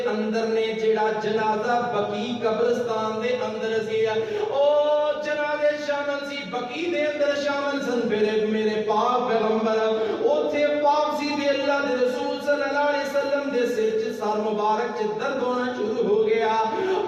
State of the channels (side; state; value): both; identical; correlation 1.00